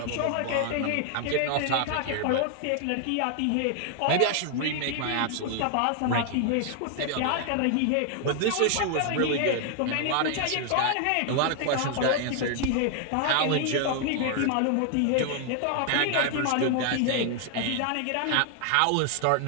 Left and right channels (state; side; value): different; both; correlation 0.00